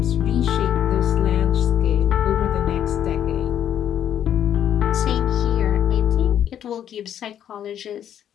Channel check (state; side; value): quieter; right; 9.9 dB